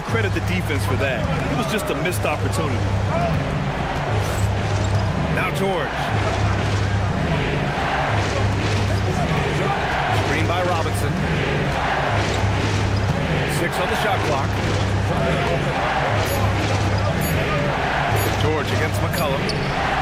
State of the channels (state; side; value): identical; both; correlation 1.00